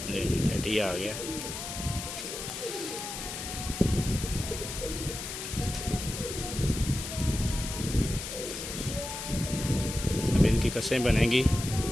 ले जी टेडी आ गया। अब इनकी कसें बनेंगी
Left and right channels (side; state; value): left; noise; hiss, 7 dB below the sound